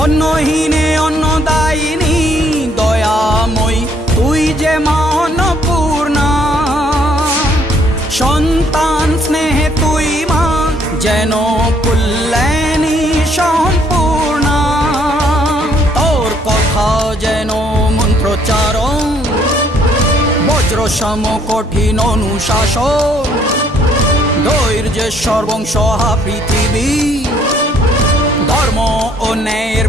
অন্নহীনে অন্নদায়িনী দয়াময়ী তুই যে মা অন্নপূর্ণা। সন্তান স্নেহে তুই মা যেন কল্যাণী সম্পূর্ণা। তোর কথা যেন মন্ত্রোচ্চারণ, বজ্র সম কঠিন অনুশাসন। ধৈর্যের সর্বংসহা পৃথিবী, ধর্ম ও ন্যায়ের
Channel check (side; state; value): both; normal; correlation 0.65